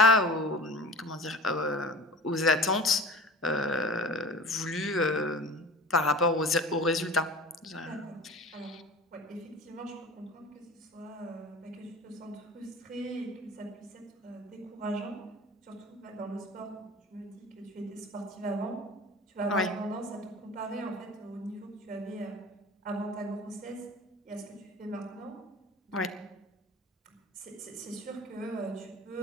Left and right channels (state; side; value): normal; both; correlation 0.37